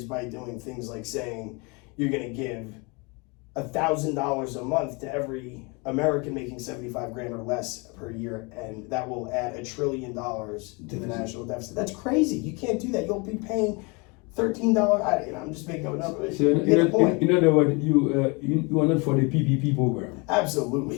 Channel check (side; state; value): right; quieter; 29.6 dB